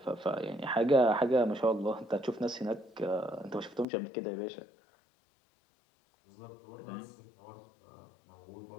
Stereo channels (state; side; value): drops out; right; at 3.9 s